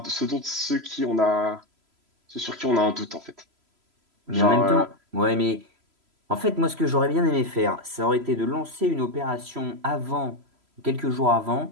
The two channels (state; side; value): late; left; 3.0 ms